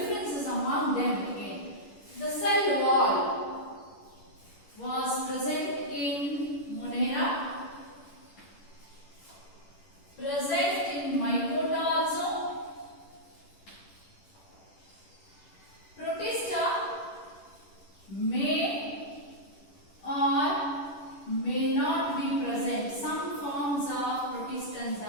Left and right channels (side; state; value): right; late; 10 ms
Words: among them again. The cell wall was present in Monera, present in Mycota also. Protista may or may not be present. Some forms of protistans